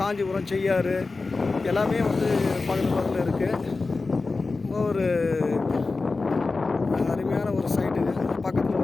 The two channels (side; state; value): right; quieter; 3.8 dB